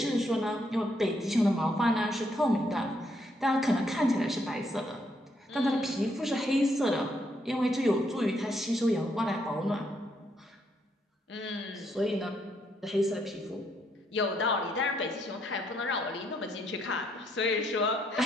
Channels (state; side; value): normal; both; correlation 0.74